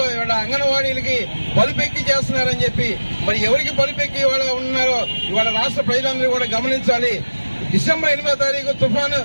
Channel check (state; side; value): inverted; both; correlation -1.00